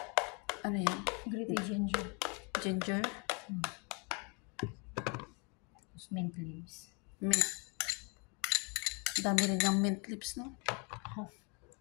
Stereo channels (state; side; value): quieter; right; 29.8 dB